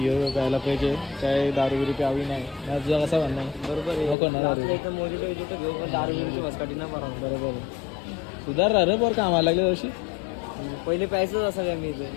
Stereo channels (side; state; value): right; drops out; at 4.2 s